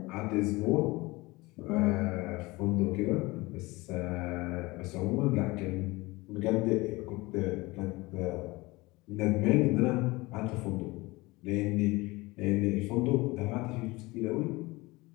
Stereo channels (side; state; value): right; quieter; 22.2 dB